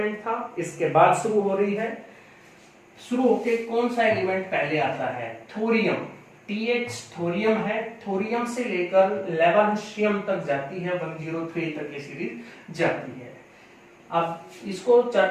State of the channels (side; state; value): both; identical; correlation 1.00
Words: था, इसके बाद शुरू हो रही है। शुरू होके कौन सा एलिमेंट पहले आता है? थोरियम। TH थोरियम है, थोरियम से लेकर लेवरेंशियम तक जाती है, 103 तक ये सीरीज जाती है। अब इसको